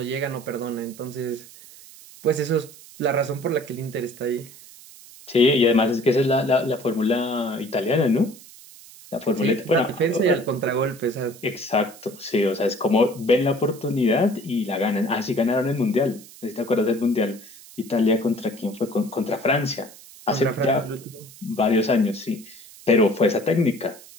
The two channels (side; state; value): right; noise; hiss, 20 dB below the sound